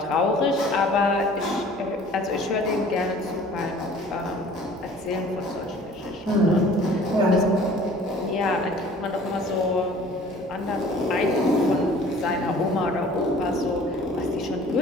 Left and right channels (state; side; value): normal; both; correlation 0.49